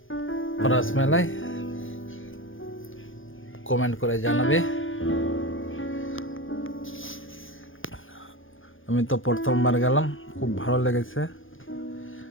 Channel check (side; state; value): right; late; 0.58 ms